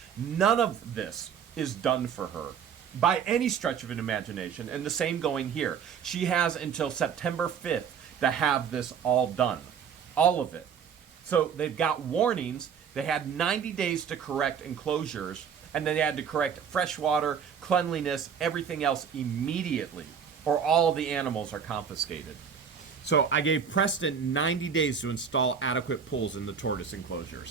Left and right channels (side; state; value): left; quieter; 7.3 dB